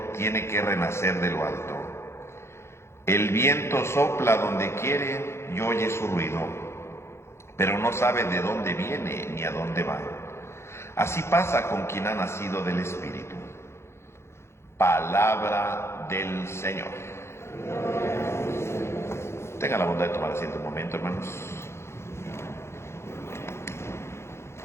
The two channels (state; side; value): late; right; 0.13 ms